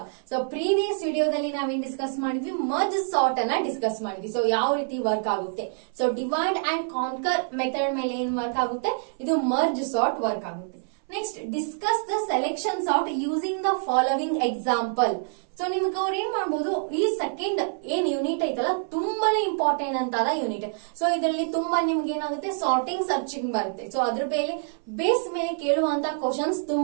So previous ವಿಡಿಯೋದಲ್ಲಿ ನಾವೇನ್ ಡಿಸ್ಕಸ್ ಮಾಡಿದ್ವಿ, ಮರ್ಜ್ ಸಾರ್ಟ್ ಅನ್ನ ಡಿಸ್ಕಸ್ ಮಾಡಿದ್ವಿ. ಸೊ ಯಾವ ರೀತಿ ವರ್ಕ್ ಆಗುತ್ತೆ. So divide and conquer method ಮೇಲೆ ಏನ್ ವರ್ಕ್ ಆಗುತ್ತೆ, ಇದು ಮರ್ಜ್ ಸಾರ್ಟ್ ವರ್ಕ್ ಆಗುತ್ತೆ. Next discuss the selection sort using the following example. So ನಿಮ್ಗೆ ಅವ್ರು ಏನ್ ಮಾಡ್ಬೋದು, ಈ ಸೆಕೆಂಡ್ ಏನ್ ಯೂನಿಟ್ ಐತಲ್ಲ ತುಂಬಾನೇ ಇಂಪಾರ್ಟೆಂಟ್ ಅಂತ ಯೂನಿಟ್. ಸೊ ಇದರಲ್ಲಿ ತುಂಬಾ ನಿಮ್ಗೆ ಏನಾಗುತ್ತೆ, ಸಾರ್ಟಿಂಗ್ ಸರ್ಚಿಂಗ್ ಬರುತ್ತೆ. ಸೊ ಅದ್ರ ಬೇಸ್ ಮೇಲೆ ಕೇಳುವಂತ ಕ್ವಶನ್ಸ್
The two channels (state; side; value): silent; left; 61 dB below the other